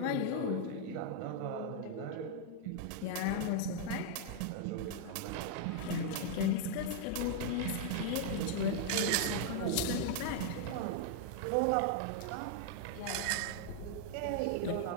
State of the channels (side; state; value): both; different; correlation 0.00